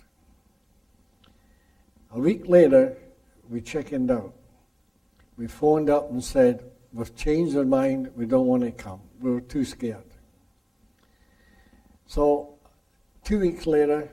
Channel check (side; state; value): both; identical; correlation 1.00